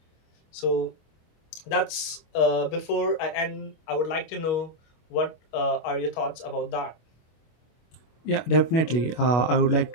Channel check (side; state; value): right; late; 25 ms